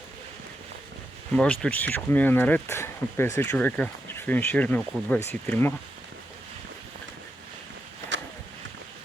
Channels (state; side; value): normal; both; correlation 0.85